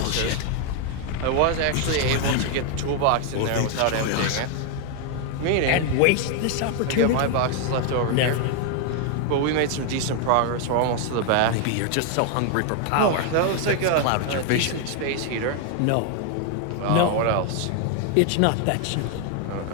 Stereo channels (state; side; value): different; both; correlation 0.01